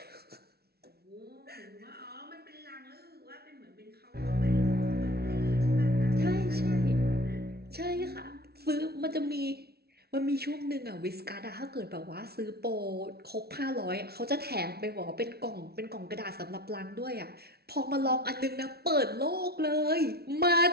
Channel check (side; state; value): left; late; 0.46 ms